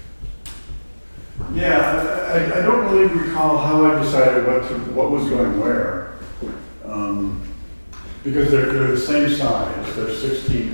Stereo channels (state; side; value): inverted; both; correlation -1.00